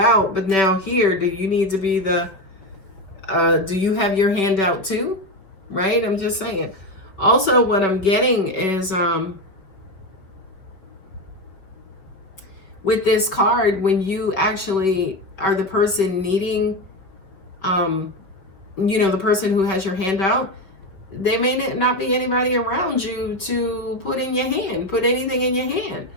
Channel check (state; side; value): late; right; 5.5 ms